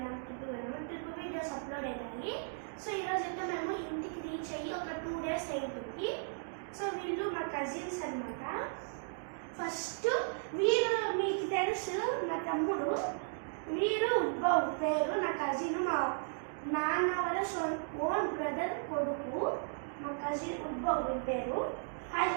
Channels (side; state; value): left; silent; digital silence